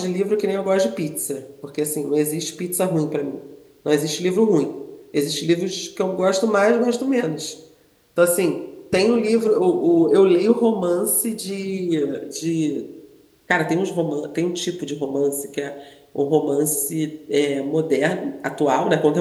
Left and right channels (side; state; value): both; identical; correlation 1.00